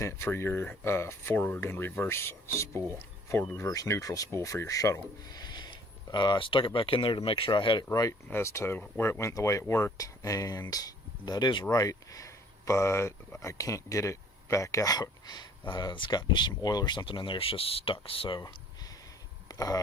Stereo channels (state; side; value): normal; both; correlation 0.56